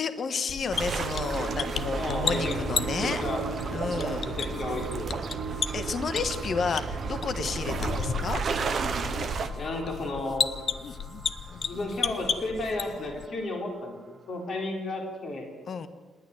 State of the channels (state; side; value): normal; both; correlation 0.74